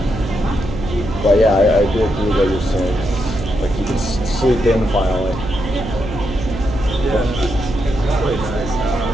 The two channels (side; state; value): right; noise; hum, 8 dB below the sound